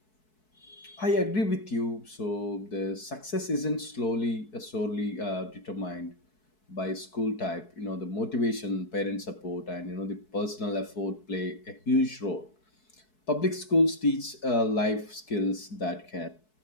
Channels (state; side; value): late; right; 4.6 ms